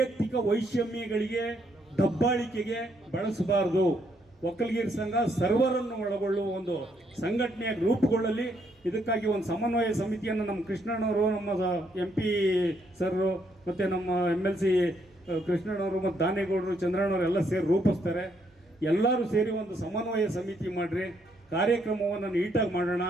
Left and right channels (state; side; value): normal; both; correlation 0.73